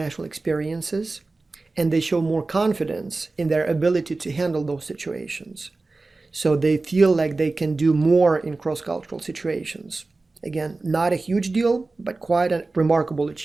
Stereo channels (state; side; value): quieter; left; 3.4 dB